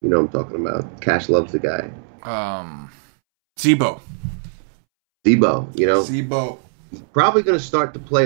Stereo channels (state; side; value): silent; left; 66 dB below the other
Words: I'm talking about. Cash loves the guy. Zebo. Zebo. He's probably going to start to play